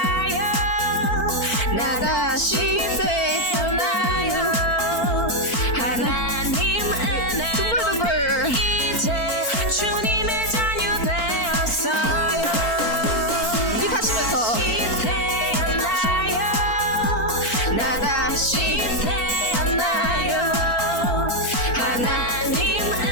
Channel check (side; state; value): right; late; 3.8 ms